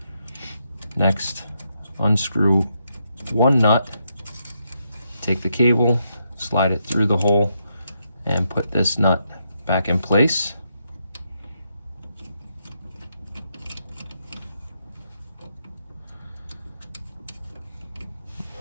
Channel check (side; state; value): both; inverted; correlation -0.80